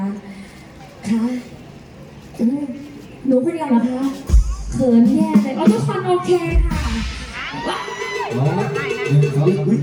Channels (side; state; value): both; identical; correlation 1.00